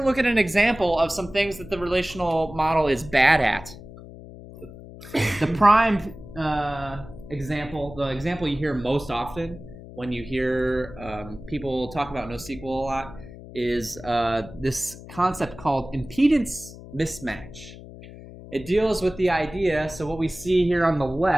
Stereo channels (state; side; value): noise; left; hum, 16 dB below the sound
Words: at an example of some things that the relational model is bad at. The prime example, the example you hear most often when you hear people talk about NoSQL a lot, is this concept called impedance mismatch. It deals with the idea, so what we see here on the